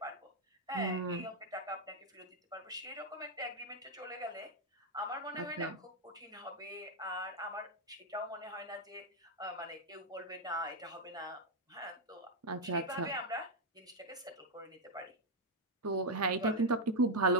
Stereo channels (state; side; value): normal; both; correlation 0.01